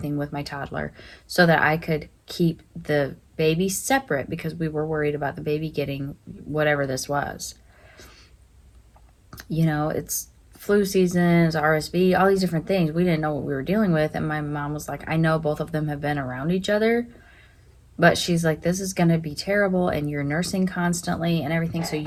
with my toddler so that I could keep the baby separate because we were worried about the baby getting whatever this was. You know, it's flu seasons, RSV, all these different things. We didn't know what we were dealing with. And my mom was like, I know both of them have been around each other, but she's like, this is going to be terrible and you're nursing constantly and everything. So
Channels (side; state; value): both; identical; correlation 1.00